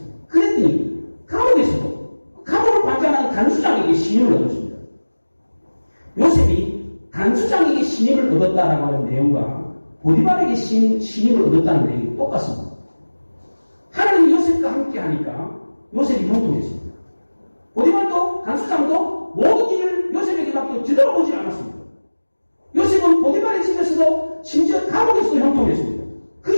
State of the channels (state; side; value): inverted; both; correlation -1.00